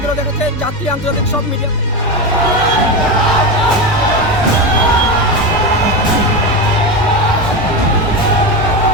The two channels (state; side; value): normal; both; correlation 0.17